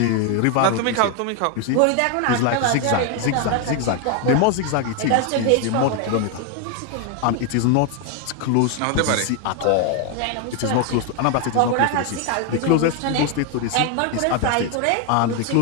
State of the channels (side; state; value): both; different; correlation 0.01